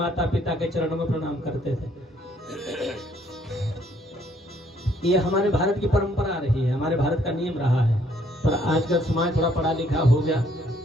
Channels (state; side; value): normal; both; correlation 0.66